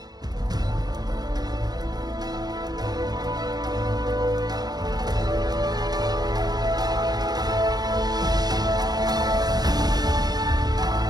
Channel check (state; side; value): late; left; 0.19 ms